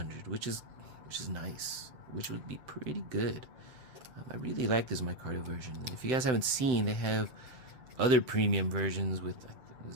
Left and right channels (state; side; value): late; left; 7.8 ms